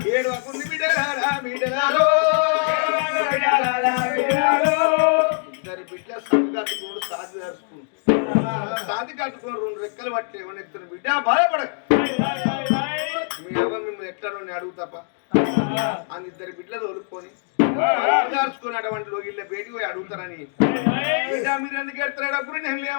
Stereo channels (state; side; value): silent; right; 59 dB below the other